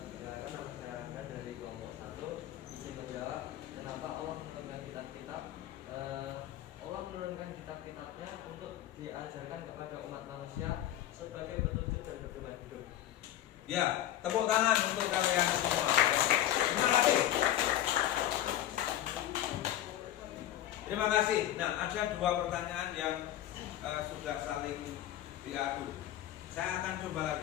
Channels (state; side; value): quieter; right; 12.8 dB